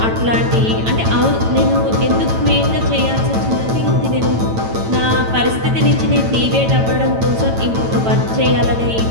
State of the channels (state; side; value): late; left; 9.0 ms